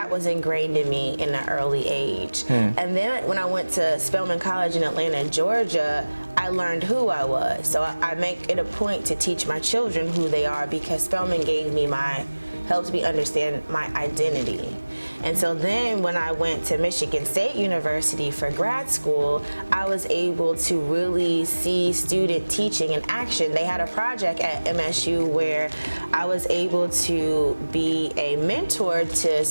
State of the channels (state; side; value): inverted; both; correlation -1.00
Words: was ingrained in me in an early age. And then when I went to Spelman College in Atlanta, Georgia, I learned who I was. So I make it a point to teach my children who they are, because Spelman helped me understand my identity. And so then when I went to Michigan State University for grad school, I was able to really see student teaching in action. They had a project at MSU where I was able to be a mentor to